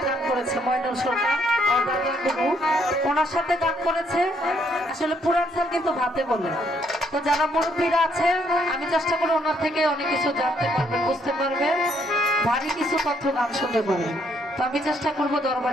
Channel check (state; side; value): normal; both; correlation 0.70